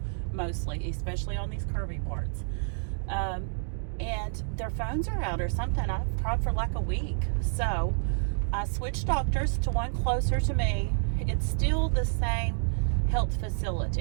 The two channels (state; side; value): silent; left; digital silence